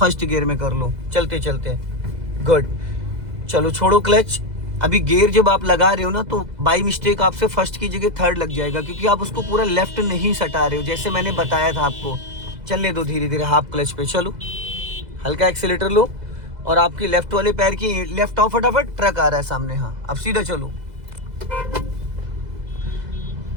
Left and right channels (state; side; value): late; left; 2.0 ms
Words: गियर में कर लो चलते चलते। गुड, चलो छोड़ो क्लच। अभी गियर जब आप लगा रहे हो ना तो बाई मिस्टेक आपसे फर्स्ट की जगह थर्ड लग जाएगा, क्योंकि आप उसको पूरा लेफ्ट नहीं सटा रहे हो जैसे मैंने बताया था आपको। चलने दो धीरे धीरे, हाफ क्लच पे चलो, हल्का एक्सीलेटर लो और आपकी लेफ्ट वाले पैर की लेफ्ट आओ, फटाफट ट्रक आ रहा है सामने। हाँ, अब सीधा चलो।